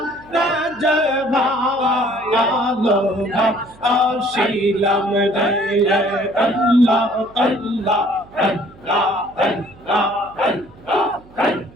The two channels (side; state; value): right; noise; hum, 24 dB below the sound